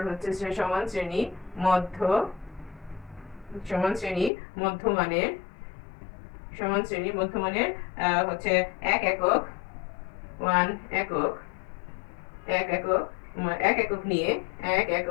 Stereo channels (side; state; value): right; drops out; at 4.3 s